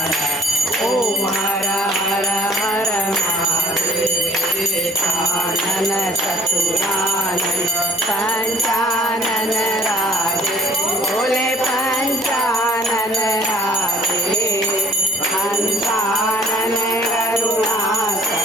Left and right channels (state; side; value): normal; both; correlation 0.53